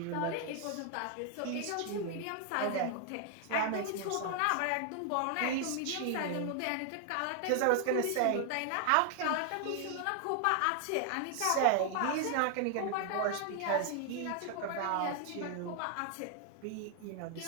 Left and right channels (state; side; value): different; both; correlation 0.00